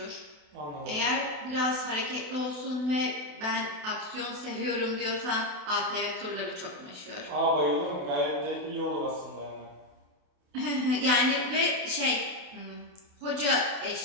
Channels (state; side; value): late; left; 28 ms